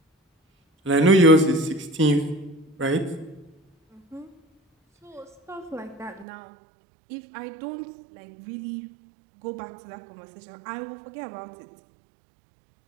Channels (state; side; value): drops out; left; at 6.2 s